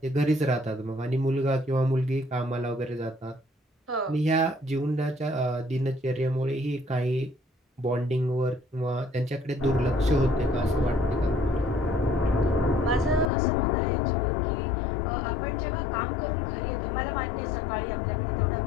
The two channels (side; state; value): right; drops out; at 13.3 s